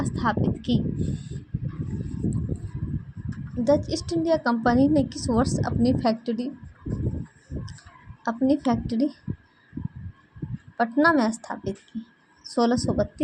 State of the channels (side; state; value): both; identical; correlation 1.00